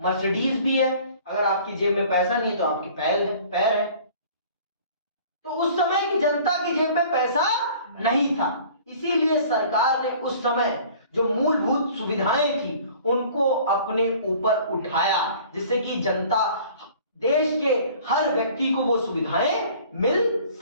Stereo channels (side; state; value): both; inverted; correlation -0.49